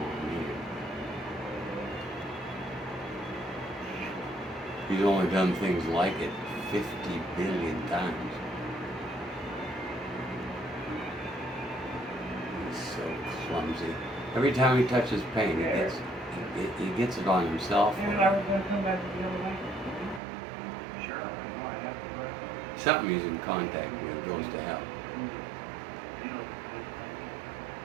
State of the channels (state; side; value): drops out; left; at 20.2 s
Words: me. He's only done things like it 50 billion times. He's so clumsy. Every time he touches paint, he gets it on himself. Something he's in contact with goes to hell.